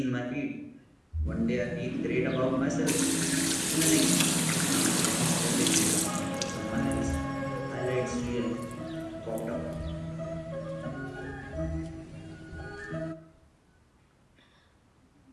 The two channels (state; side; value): identical; both; correlation 1.00